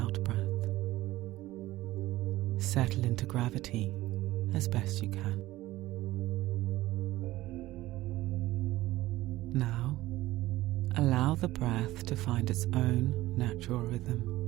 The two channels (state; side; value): quieter; left; 17.0 dB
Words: Settle into gravity as best you can. Now, allow the breath to find its own natural rhythm.